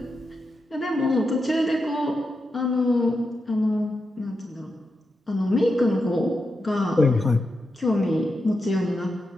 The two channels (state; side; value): normal; both; correlation 0.87